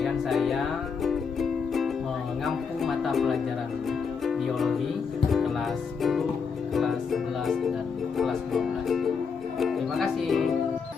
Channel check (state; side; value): quieter; right; 5.7 dB